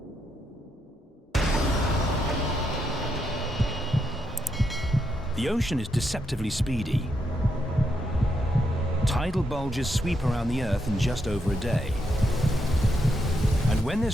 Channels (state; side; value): normal; both; correlation 0.80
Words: The ocean is deceptively speedy. Tidal bulges sweep around the Earth in just over a day. And when